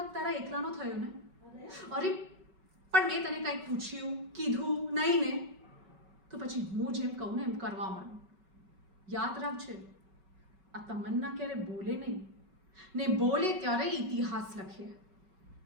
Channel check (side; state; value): left; late; 5.3 ms